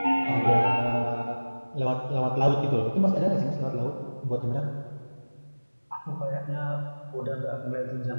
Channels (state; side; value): inverted; both; correlation -1.00